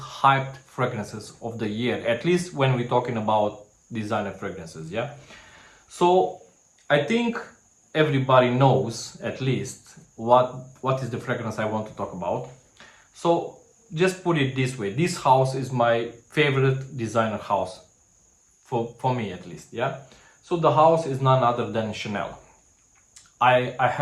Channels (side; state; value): both; identical; correlation 1.00